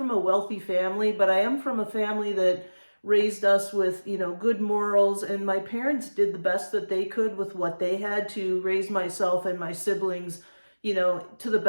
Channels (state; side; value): inverted; both; correlation -1.00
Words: a wealthy family, but I am from a family that raised us with, good morals, and my parents did the best that they could with what they had to raise myself and my siblings, to the